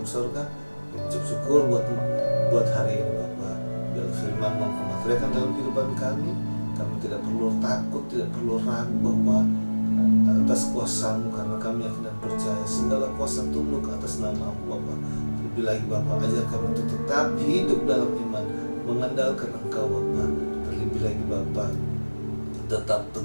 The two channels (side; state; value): both; inverted; correlation -1.00